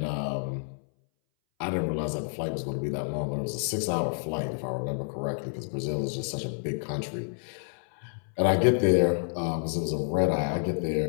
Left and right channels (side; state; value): right; silent; 59 dB below the other